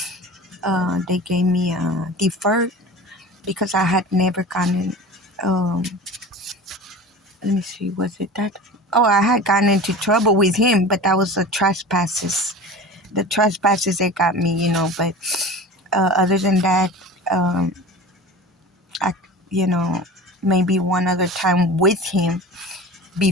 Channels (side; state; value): both; normal; correlation 0.35